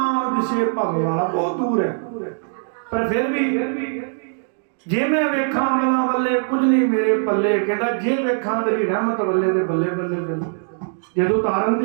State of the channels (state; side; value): silent; left; digital silence